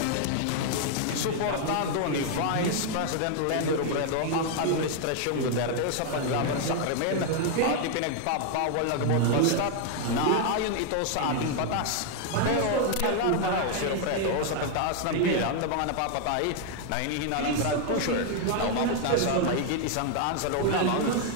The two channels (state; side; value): different; both; correlation 0.00